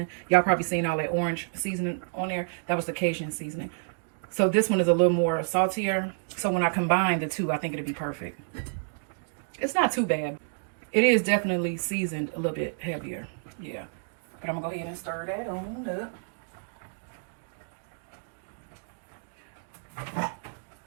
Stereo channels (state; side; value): silent; left; digital silence